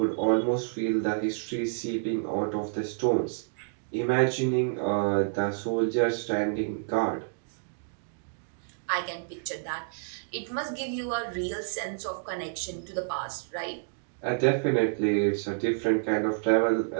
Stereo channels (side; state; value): left; silent; digital silence